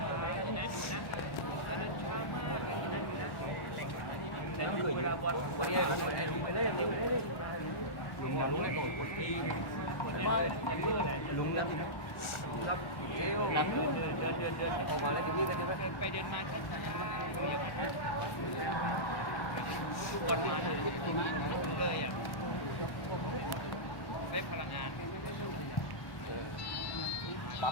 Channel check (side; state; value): right; late; 1.1 ms